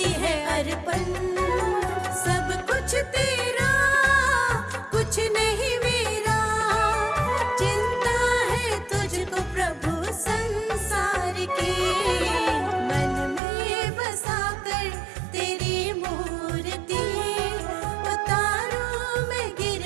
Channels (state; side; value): drops out; left; at 13.4 s